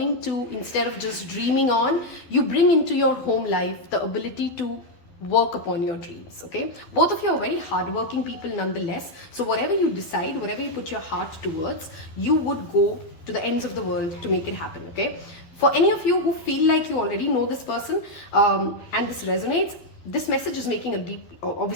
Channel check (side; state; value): right; late; 12 ms